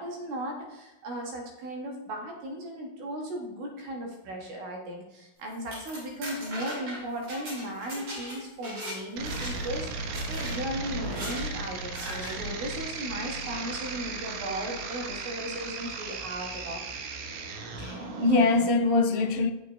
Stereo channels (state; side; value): late; left; 16 ms